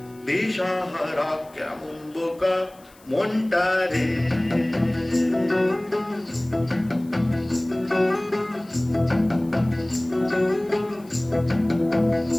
দিশাহারা কেমন বোকা মনটা রে।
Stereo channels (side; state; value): left; noise; hiss, 27 dB below the sound